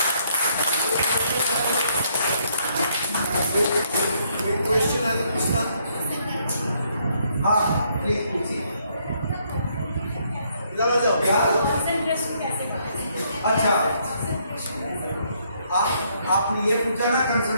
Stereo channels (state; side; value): inverted; both; correlation -0.71